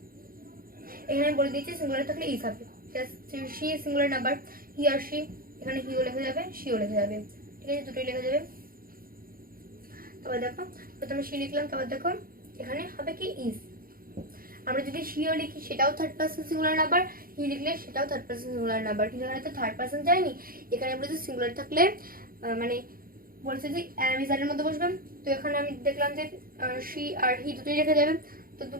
এখানে বলে দিয়েছি সিঙ্গুলার থাকলে ইস হবে। সি সিঙ্গুলার নাম্বার, হি আর সি, এখানে হিও লেখা যাবে সিও লেখা যাবে। ঠিক আছে, দুটোই লেখা যাবে। তারপর দেখো প্রথমে সি লিখলাম, তারপর দেখো এখানে হবে কি ইস। আমরা যদি সিও লিখি সেটাও থার্ড পারসন সিঙ্গুলার নাম্বার, হি লিখলে সেটাও থার্ড পারসন সিঙ্গুলার নাম্বার, কিন্তু এখানে তো থার্ড পারসন যায়নি। এখানে বলেছে সিঙ্গুলার থাকলে মানে বলছে যে অ্যামিজারের মধ্যে বসবেন। তো এখানে আমি দেখলাম যে সি আর হি দুটোই রেখে যাবে, তো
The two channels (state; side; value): late; left; 0.42 ms